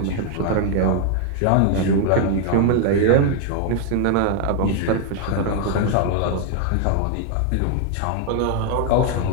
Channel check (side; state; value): both; different; correlation 0.00